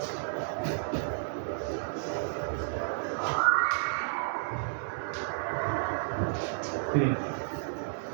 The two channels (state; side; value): silent; left; digital silence